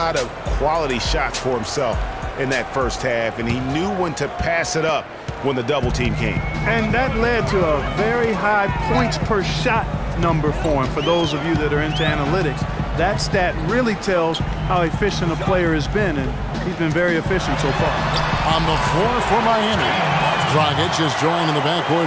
of quality shots for himself in that first half, and he knew when to pass it up when the double team came. And that led to a very high points per shot number for him. For those of you that are into analytics, that stat really tells how efficient a player has been, and he's been very efficient so far. On the floor for Miami, Dragic is joined in the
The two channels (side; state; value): both; identical; correlation 1.00